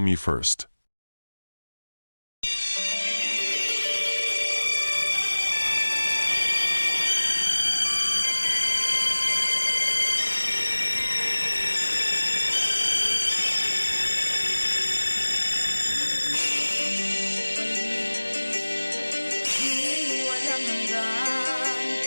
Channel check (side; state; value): both; inverted; correlation -1.00